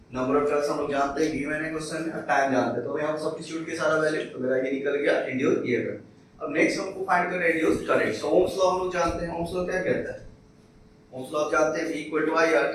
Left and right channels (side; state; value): both; identical; correlation 1.00